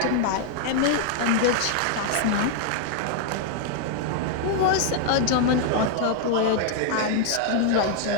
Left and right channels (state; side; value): different; both; correlation 0.00